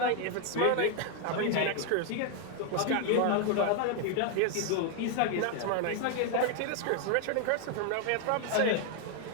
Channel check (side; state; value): both; different; correlation 0.00